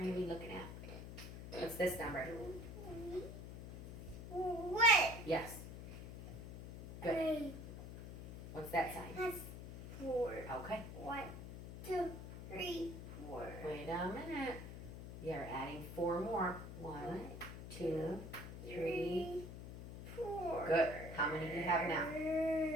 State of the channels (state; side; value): noise; left; hum, 10 dB below the sound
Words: to be looking at. What's this number? What? Yes. Good. What's that sign? That's 4. Okay. 1, 2, 3, 4. Wait a minute. You're adding 4 more. 1, 2, 3. 4. Good. How many do you have now?